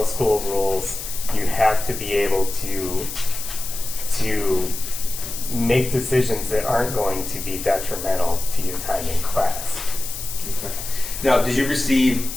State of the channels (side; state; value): left; noise; hiss, 8 dB below the sound